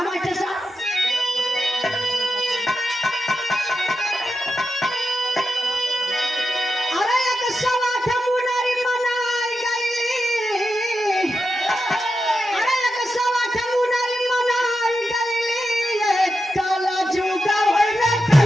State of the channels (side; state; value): both; normal; correlation 0.88